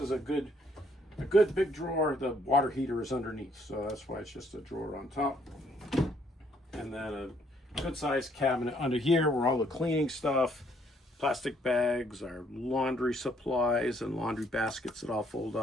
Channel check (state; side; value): normal; both; correlation 0.67